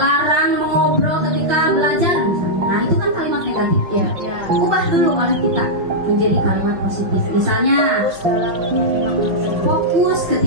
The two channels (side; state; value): left; late; 5.9 ms